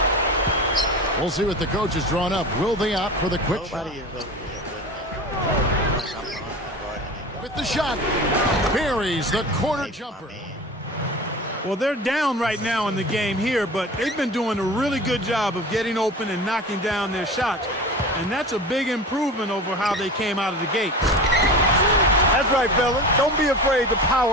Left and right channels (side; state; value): both; normal; correlation 0.34